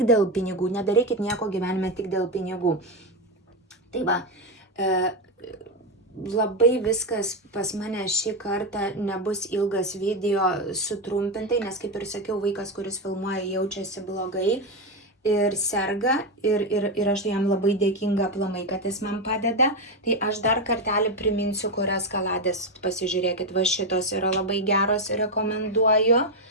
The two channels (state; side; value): normal; both; correlation 0.09